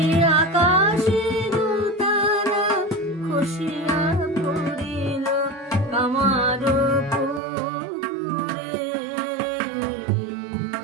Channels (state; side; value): drops out; left; at 7.4 s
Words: আকাশের তারা খসিয়া পড়িল কামার পুকুরে।